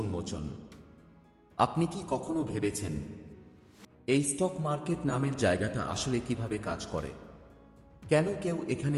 আপনি কি কখনো ভেবেছেন এই স্টক মার্কেট নামের জায়গাটা আসলে কিভাবে কাজ করে? কেন কেউ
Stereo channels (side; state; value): both; identical; correlation 1.00